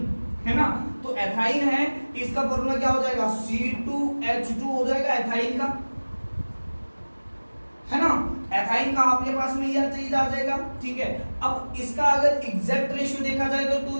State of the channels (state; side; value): inverted; both; correlation -1.00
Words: है ना, तो एथाइन है, इसका फॉर्मूला क्या हो जाएगा C2H2 हो जाएगा एथाइन का, है ना, एथाइन का आपके पास में यह चीज आ जाएगा, ठीक है। अब इसका अगर एग्जैक्ट रेशियो देखा जाए तो